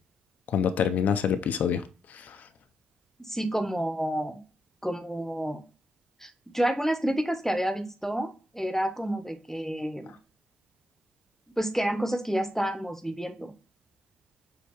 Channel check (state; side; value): normal; both; correlation 0.83